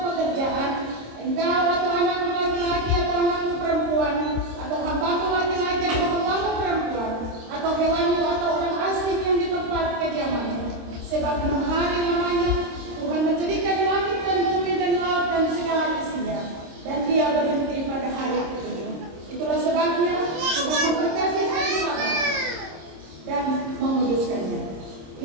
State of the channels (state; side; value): late; left; 26 ms